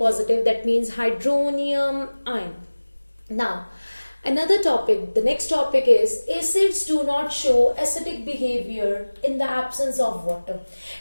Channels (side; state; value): both; inverted; correlation -1.00